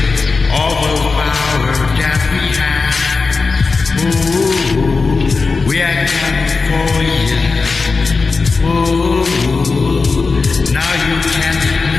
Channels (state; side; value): quieter; right; 4.3 dB